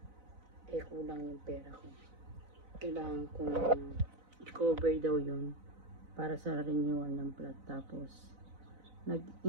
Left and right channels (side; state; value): left; late; 4.0 ms